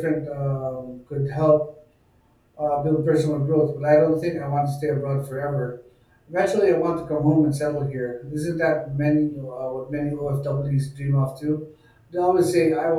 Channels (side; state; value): both; identical; correlation 1.00